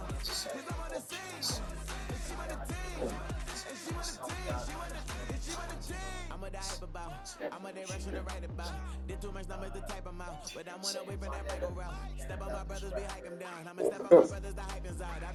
I'm on the scene. And she want a team. And she want a team. She want a team. I'm a die about. I'm a day rushing to write about. Did too much numbers to type them out. But I'm one away from that Michael route. Step on my brothers, we hike them down. I'ma step on my brothers, the hype inside. I've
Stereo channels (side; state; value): both; identical; correlation 1.00